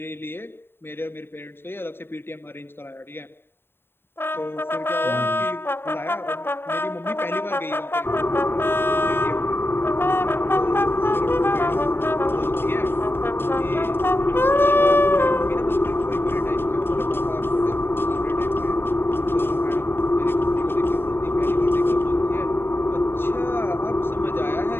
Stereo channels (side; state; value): right; late; 0.11 ms